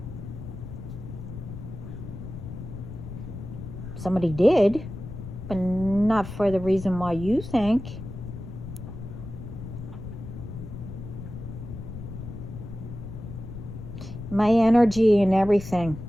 Somebody did, but not for the reason why you think. My energy and everything.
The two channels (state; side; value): noise; left; rumble, 10 dB below the sound